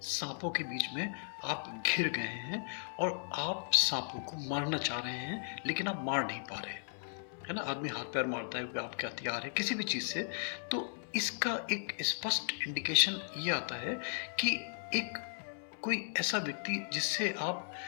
सांपों के बीच में आप घिर गए हैं और आप सांपों को मारना चाह रहे हैं लेकिन आप मार नहीं पा रहे, है ना। आदमी हाथ पैर मारता है, आपके हथियार है किसी भी चीज़ से, तो इसका एक स्पष्ट इंडिकेशन ये आता है कि एक कोई ऐसा व्यक्ति जिससे आप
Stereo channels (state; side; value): silent; right; 54 dB below the other